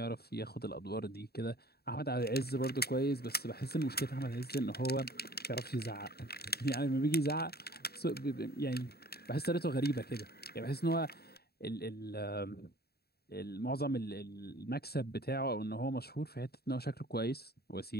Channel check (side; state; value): right; late; 0.46 ms